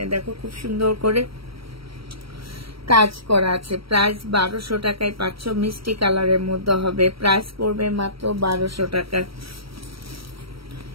দেখো খুব সুন্দর করে কাজ করা আছে। প্রাইস 1200 টাকায় পাচ্ছ, মিষ্টি কালারের মধ্যে হবে। প্রাইস পড়বে মাত্র 1200 টাকা।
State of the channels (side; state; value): left; late; 0.75 ms